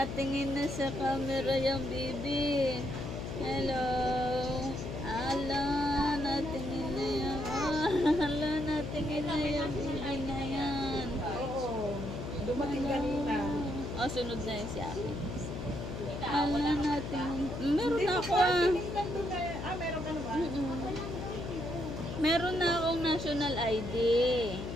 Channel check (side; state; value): left; noise; hum, 6 dB below the sound